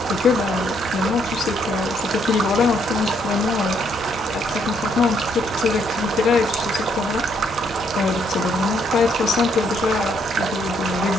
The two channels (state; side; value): normal; both; correlation 0.71